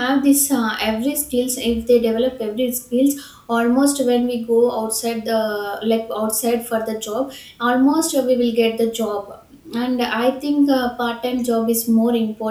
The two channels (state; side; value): identical; both; correlation 1.00